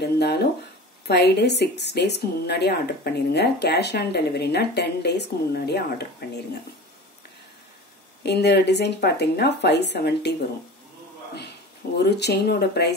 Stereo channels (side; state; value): both; normal; correlation 0.35